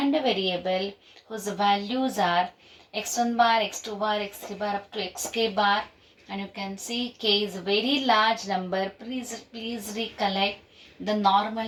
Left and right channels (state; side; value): identical; both; correlation 1.00